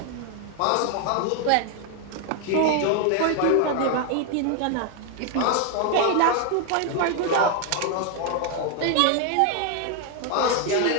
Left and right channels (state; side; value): different; both; correlation 0.00